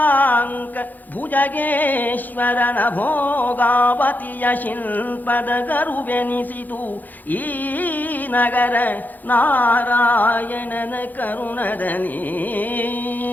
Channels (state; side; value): late; right; 0.084 ms